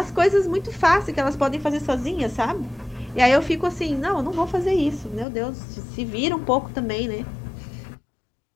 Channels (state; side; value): drops out; right; at 5.2 s